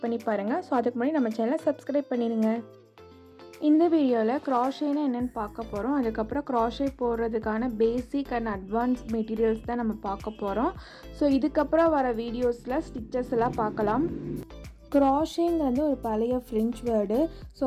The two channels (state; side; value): identical; both; correlation 1.00